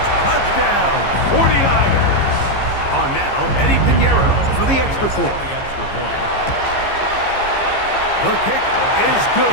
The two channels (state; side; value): late; right; 15 ms